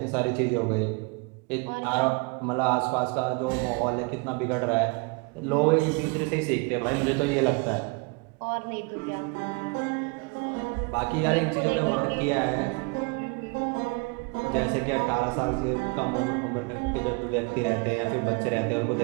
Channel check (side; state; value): left; quieter; 30.8 dB